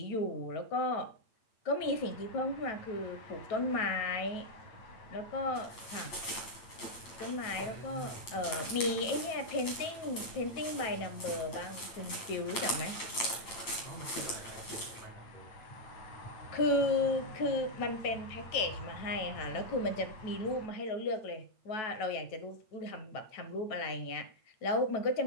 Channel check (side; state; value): right; late; 8.7 ms